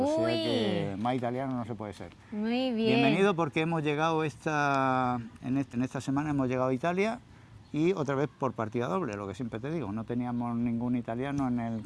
sea que más italiano no se puede ser. Muy bien. Bienvenido porque hemos llegado en esta semana hemos llegado a Italia y otra vez por partida doble, lo que siempre te digo, no teníamos ningún italiano en el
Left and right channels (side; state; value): both; identical; correlation 1.00